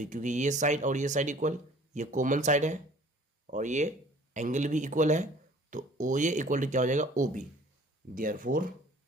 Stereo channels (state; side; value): normal; both; correlation 0.52